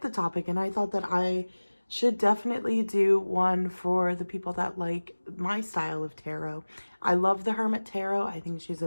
topic, and I thought that I should definitely do one for the people that like my style of tarot. I love the Hermit Tarot. I think she's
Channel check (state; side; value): inverted; both; correlation -1.00